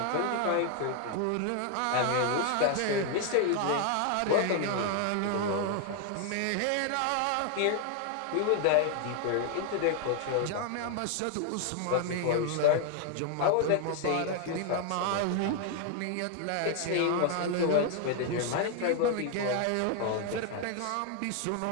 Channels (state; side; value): different; both; correlation 0.01